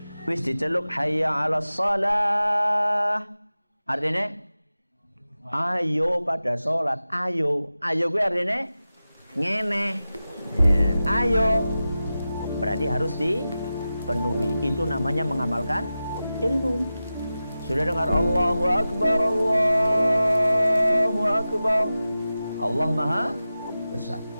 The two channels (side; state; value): both; inverted; correlation -0.94